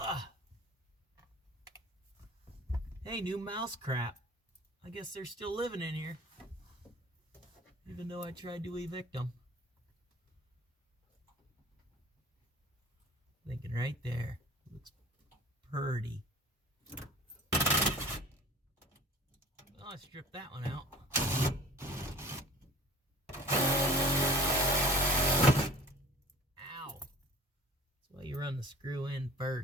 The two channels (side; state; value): both; normal; correlation 0.43